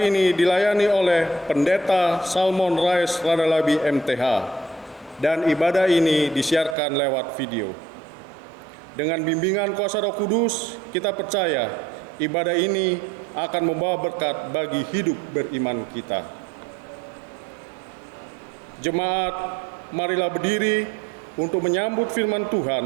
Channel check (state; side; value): drops out; left; at 6.8 s